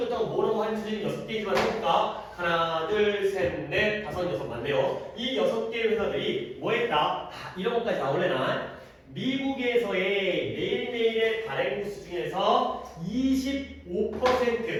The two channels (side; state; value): both; identical; correlation 1.00